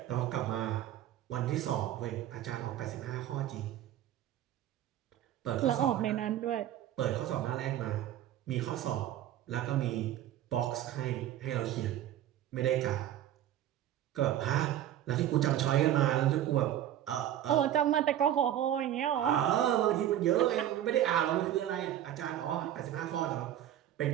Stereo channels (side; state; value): left; quieter; 11.9 dB